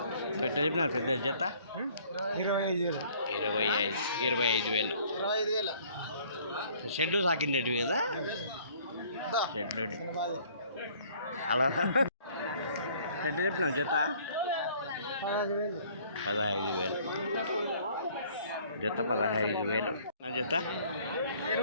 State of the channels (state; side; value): inverted; both; correlation -0.57